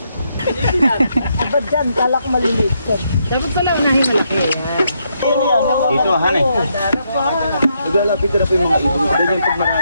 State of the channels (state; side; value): inverted; both; correlation -0.78